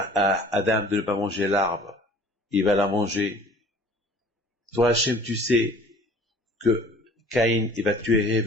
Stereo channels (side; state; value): both; normal; correlation 0.49